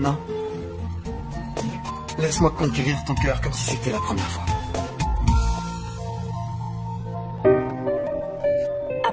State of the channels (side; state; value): both; identical; correlation 1.00